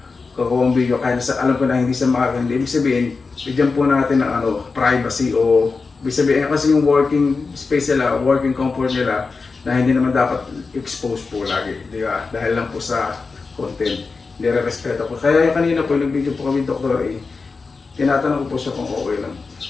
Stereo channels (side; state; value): right; quieter; 4.4 dB